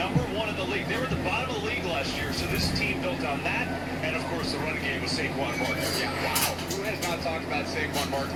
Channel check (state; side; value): identical; both; correlation 1.00